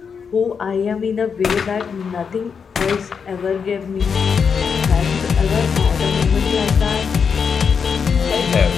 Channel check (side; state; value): right; quieter; 6.2 dB